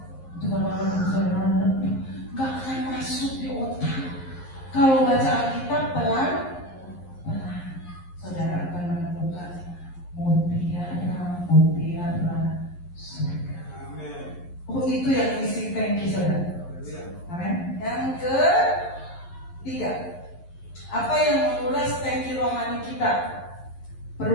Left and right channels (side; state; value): right; late; 11 ms